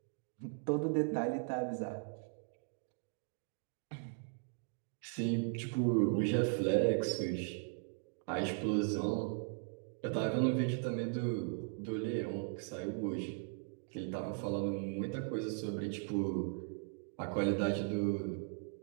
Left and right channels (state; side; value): silent; left; 52 dB below the other